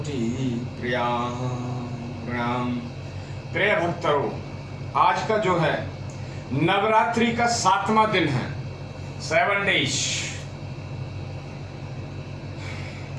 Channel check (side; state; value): both; identical; correlation 1.00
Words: प्रणाम। प्रिय भक्तों, आज का जो है नवरात्रि का 7वां दिन है, 7 डेज।